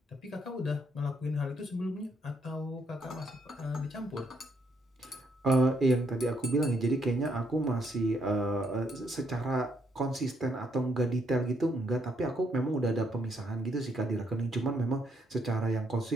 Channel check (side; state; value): both; normal; correlation 0.73